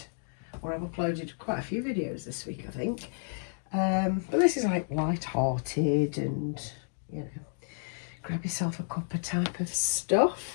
or I've uploaded quite a few videos this week, I think. But this is like light-hearted and, you know, grab yourself a cuppa type of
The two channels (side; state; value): right; silent; digital silence